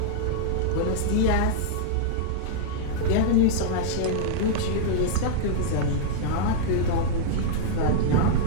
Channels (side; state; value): both; different; correlation -0.02